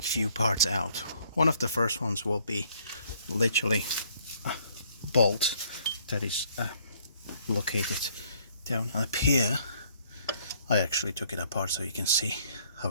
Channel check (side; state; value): both; inverted; correlation -0.63